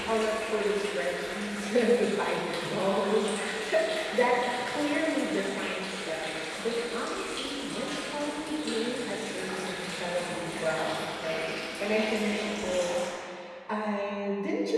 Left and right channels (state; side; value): identical; both; correlation 1.00